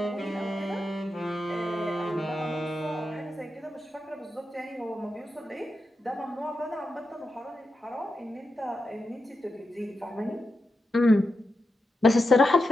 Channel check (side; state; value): both; normal; correlation 0.88